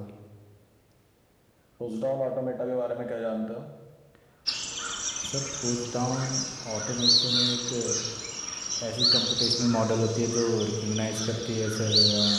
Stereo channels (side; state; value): both; identical; correlation 1.00